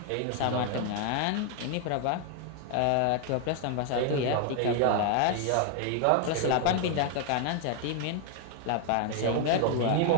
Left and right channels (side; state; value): both; different; correlation 0.00